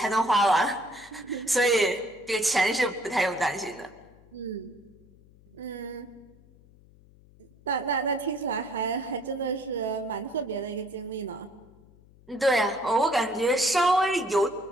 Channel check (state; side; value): noise; left; hum, 26 dB below the sound